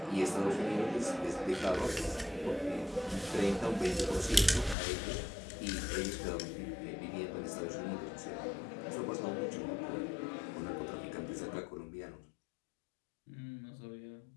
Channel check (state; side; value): drops out; right; at 4.8 s